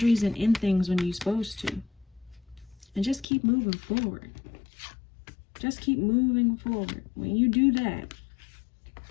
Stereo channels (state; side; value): drops out; right; at 3.2 s